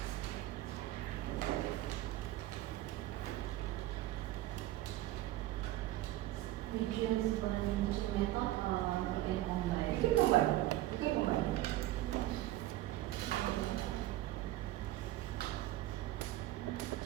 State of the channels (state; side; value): quieter; left; 15.8 dB